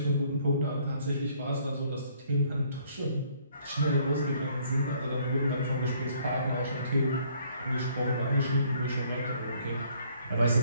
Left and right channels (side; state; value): both; inverted; correlation -0.63